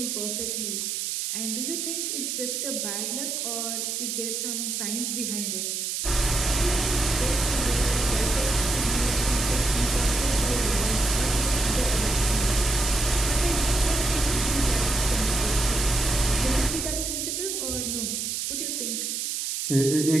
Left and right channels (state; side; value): noise; right; hiss, 2 dB below the sound